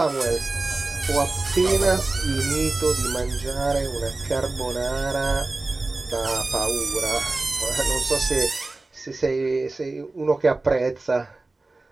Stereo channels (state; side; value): quieter; left; 3.3 dB